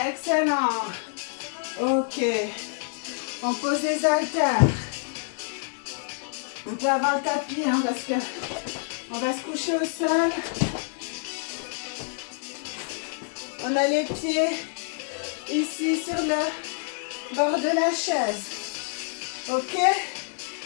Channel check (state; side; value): silent; right; 60 dB below the other